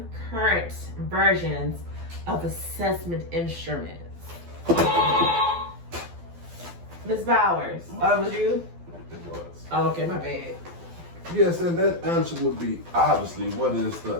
versions of assessment instruments. Ms. Bowers, oh, it was you? It was. Oh, okay, my bad. Yes, and that answer would be obviously what is the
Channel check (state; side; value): late; left; 12 ms